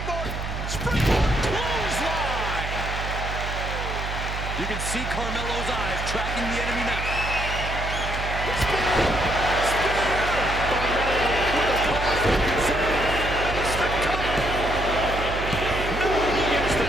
Springboard! Clothesline! You can see Carmelo's eyes tracking the enemy now.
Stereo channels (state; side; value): noise; right; hum, 5 dB below the sound